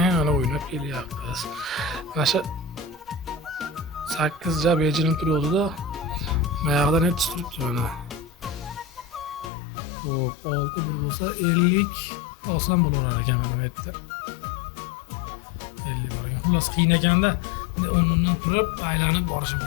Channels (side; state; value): right; drops out; at 9.5 s